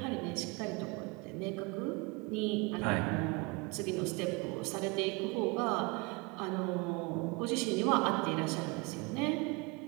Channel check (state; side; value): quieter; left; 27.5 dB